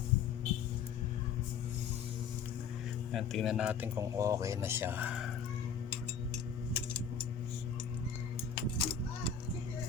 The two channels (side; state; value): right; quieter; 6.6 dB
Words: Ayan, tingnan natin kung okay na siya.